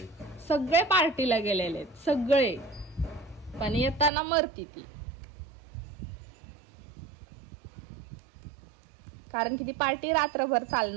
सगळे पार्टीला गेलेले, सगळे, पण येताना मरती ती, कारण की ती पार्टी रात्रभर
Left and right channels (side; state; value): left; drops out; at 4.1 s